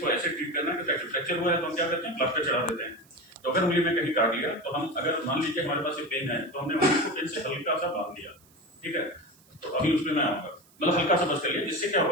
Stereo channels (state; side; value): noise; right; hiss, 29 dB below the sound